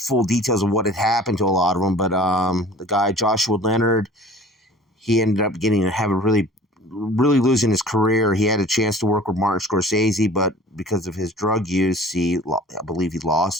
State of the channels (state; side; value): normal; both; correlation 0.46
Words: details of what had happened to a lot of them, but the guy Joshua Leonard, he ended up really losing his career. He had a chance to work with Martin Scorsese, but because of his drug use, I believe he